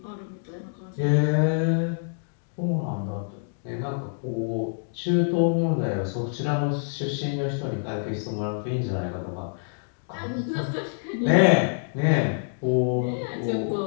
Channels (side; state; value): right; silent; digital silence